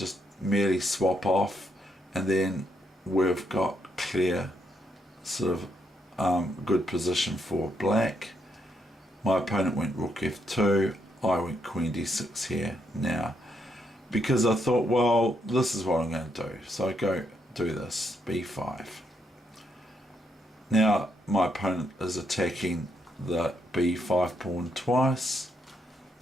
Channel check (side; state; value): both; normal; correlation 0.77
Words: merely swap off, and then we've got clear sort of good position for black? My opponent went rook F2, I went queen D6 here now, because I thought, well, this is what I'm going to do. So I go do this, B5. Now my opponent is attacking the B5 pawn twice,